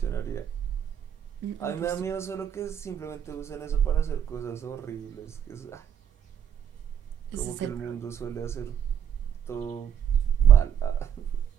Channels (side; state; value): left; quieter; 8.7 dB